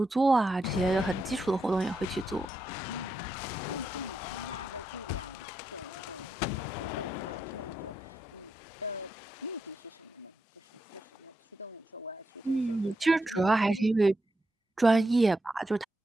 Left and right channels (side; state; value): both; normal; correlation 0.84